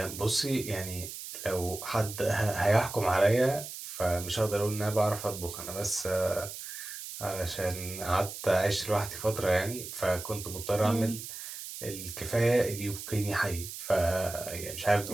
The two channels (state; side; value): noise; right; hiss, 10 dB below the sound